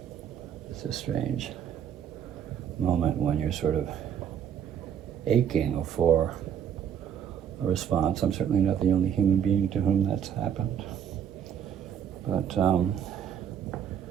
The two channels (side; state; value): left; quieter; 8.7 dB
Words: it's a strange moment when you're sort of aching for a response. I'm certainly not the only human being to whom that's happened. But there